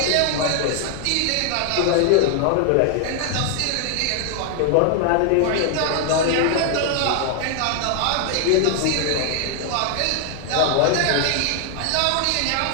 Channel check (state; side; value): different; both; correlation 0.00